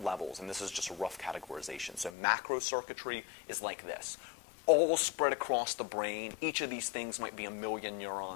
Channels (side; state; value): right; drops out; at 2.1 s